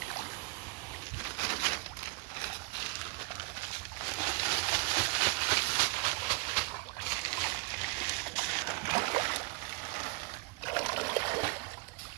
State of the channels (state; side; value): quieter; left; 28.5 dB